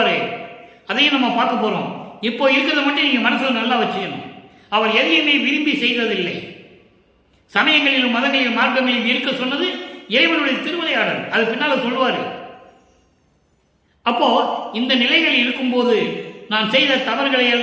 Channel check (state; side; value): identical; both; correlation 1.00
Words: அதையும் நம்ம பார்க்க போறோம். இப்போ இருக்கிறத மட்டும் நீங்க மனசுல நல்லா வச்சுக்கணும். அவர் எதையுமே விரும்பி செய்ததில்லை. சமயங்களிலும் மதங்களிலும் மார்க்கங்களிலும் இருக்க சொன்னது இறைவனுடைய திருவிளையாடல். அது பின்னால சொல்லுவாரு. அப்போ இந்த நிலைகள் இருக்கும்போது நான் செய்த தவறுகளை